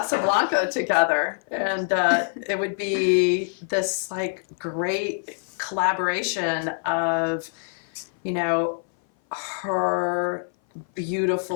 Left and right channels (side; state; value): right; silent; 57 dB below the other